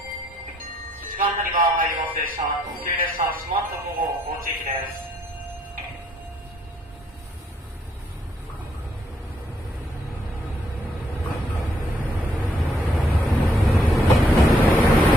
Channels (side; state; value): both; normal; correlation 0.72